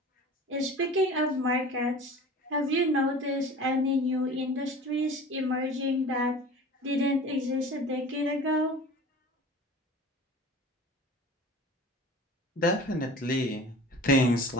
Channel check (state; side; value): normal; both; correlation 0.40